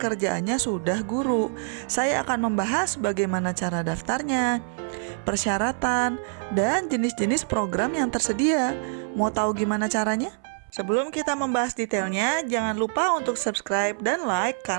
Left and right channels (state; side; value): silent; left; 61 dB below the other